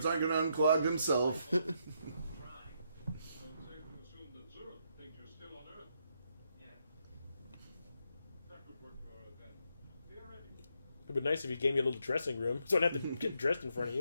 aren't going to unclog themselves. Don't safe to assume that Zurich thinks you're still on Earth. Yeah. That could work for her then. Theoretically. It'd be nice if he gave me a little dressing room, so I don't have to get dressed in front of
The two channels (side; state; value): both; inverted; correlation -0.77